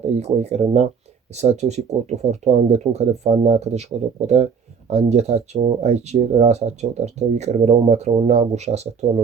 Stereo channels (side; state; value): left; quieter; 6.3 dB